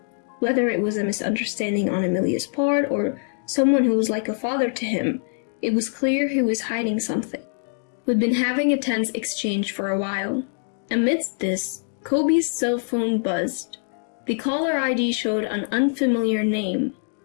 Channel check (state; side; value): silent; right; digital silence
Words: Whether it was a misunderstanding on Emilia's part or someone who was like a father to him, it was clear he was hiding something. We'd been having a tense exchange for a while. Amidst this, Kobe's cell phone buzzed. The caller ID showed an unfamiliar name,